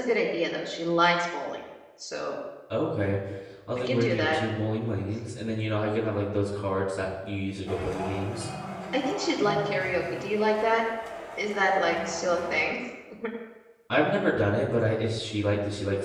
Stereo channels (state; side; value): identical; both; correlation 1.00